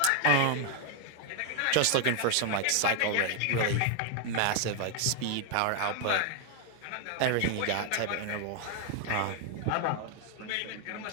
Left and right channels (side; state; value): both; different; correlation 0.00